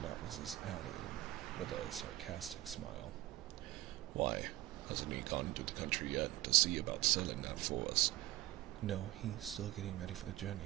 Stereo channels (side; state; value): left; quieter; 16.8 dB